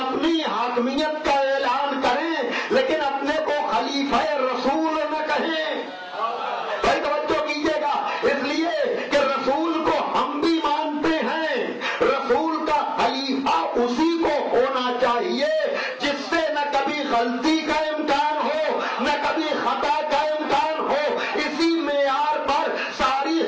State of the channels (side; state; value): both; identical; correlation 1.00